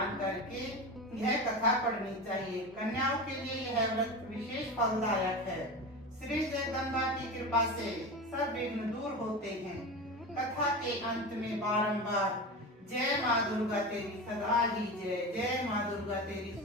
करके यह कथा पढ़नी चाहिए। कन्याओं के लिए यह व्रत विशेष फलदायक है। श्री जगदम्बा की कृपा से सब विघ्न दूर होते हैं। कथा के अंत में बारंबार जय माँ दुर्गा तेरी सदा ही जय, जय माँ दुर्गा तेरी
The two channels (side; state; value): both; normal; correlation 0.26